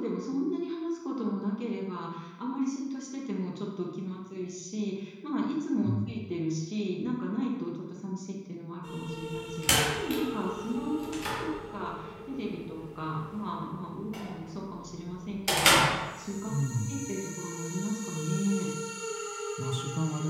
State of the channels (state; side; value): identical; both; correlation 1.00